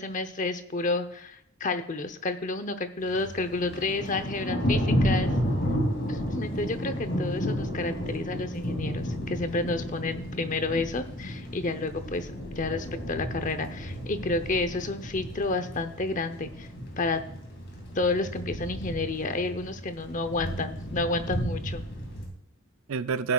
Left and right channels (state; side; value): normal; both; correlation 0.41